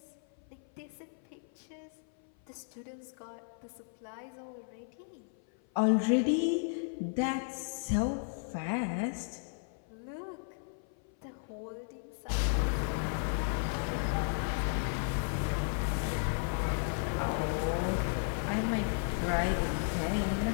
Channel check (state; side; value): silent; right; 55 dB below the other